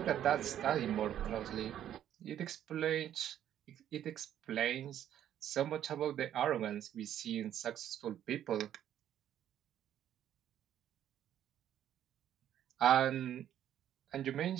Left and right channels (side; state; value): left; quieter; 10.9 dB